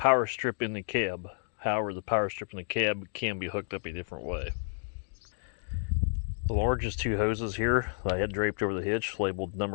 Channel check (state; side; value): silent; right; digital silence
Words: strip in the cab. However, the power strip in the cab can be hooked up a different way. The largest 2 hoses here that I had draped over the hitch, labeled